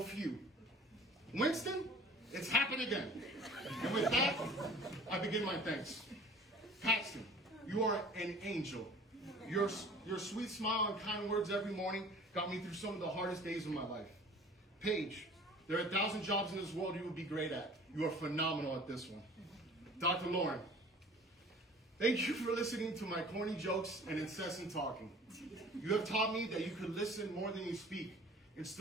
few." Winston, it's happened again. And with that, I begin my thanks. Paxton, you are an angel. Your sweet smile and kind words every morning got me through some of the hardest days of my life. Paige, there are 1,000 jobs in this world you would be great at. You are phenomenal at this one. Dr. Lauren, thank you for listening to my corny jokes and incessant talking. You have taught me that you could listen more than you speak and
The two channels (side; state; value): both; normal; correlation 0.46